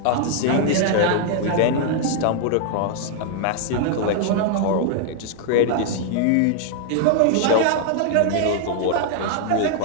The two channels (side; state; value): both; different; correlation 0.00